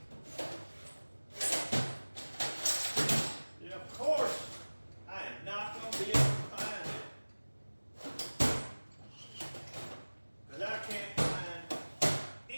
Yeah, of course. I am not going to be able to find it. Because I can't find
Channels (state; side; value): inverted; both; correlation -1.00